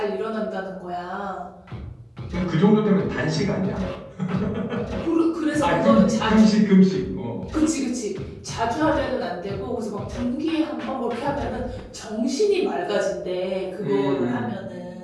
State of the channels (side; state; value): both; identical; correlation 1.00